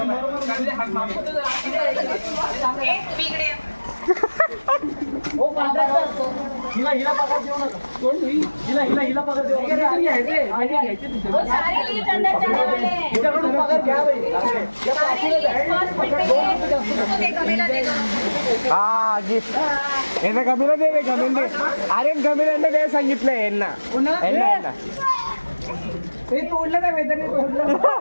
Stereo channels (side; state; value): both; inverted; correlation -1.00